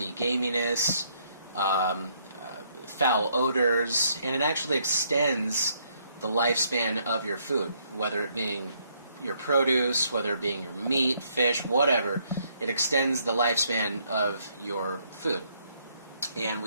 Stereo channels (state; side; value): inverted; both; correlation -0.70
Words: gaminess, foul odors, and it actually extends the lifespan of your food, whether it being your produce, whether it being your meat, fish, whatever. It extends the lifespan of your food. And